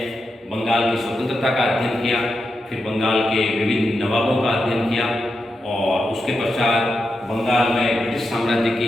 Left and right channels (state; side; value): normal; both; correlation 0.87